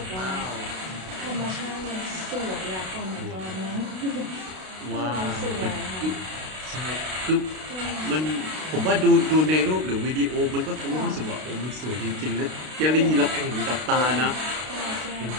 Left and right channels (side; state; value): left; late; 32 ms